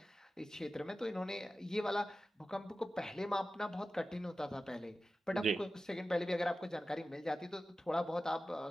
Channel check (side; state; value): both; normal; correlation 0.95